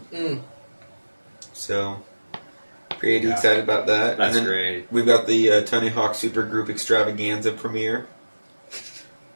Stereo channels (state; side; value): inverted; both; correlation -1.00